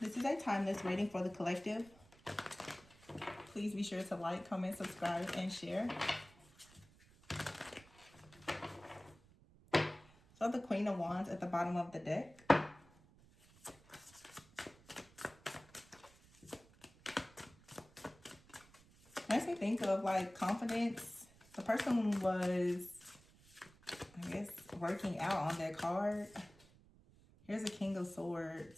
is a timeless reading for the collective. Please be sure to like, comment, subscribe, and share. So the Queen of Wands at the bottom of the deck. Makes me think of like confidence. The person was, I guess, working out on that card. Here's a King of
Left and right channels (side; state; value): right; noise; rumble, 25 dB below the sound